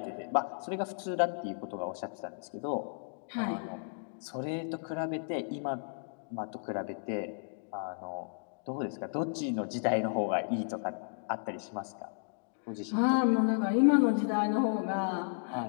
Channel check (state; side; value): silent; right; digital silence